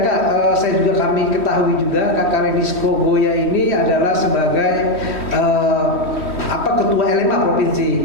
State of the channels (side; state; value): right; late; 3.1 ms